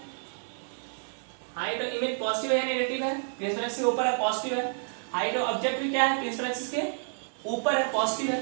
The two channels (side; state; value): left; silent; 57 dB below the other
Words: हाइट ऑफ इमेज पॉजिटिव है या नेगेटिव है? प्रिंसिपल एक्सिस के ऊपर है, पॉजिटिव है। हाइट ऑफ ऑब्जेक्ट भी क्या है? प्रिंसिपल एक्सिस के ऊपर है, पॉजिटिव है।